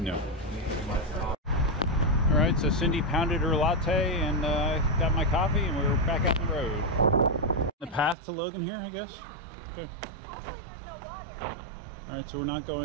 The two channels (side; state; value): left; drops out; at 8.2 s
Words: All right, so Cindy pounded her latte and got my coffee, and we're back out on the road. The path to Logan here, I guess. Okay. All right, so we're not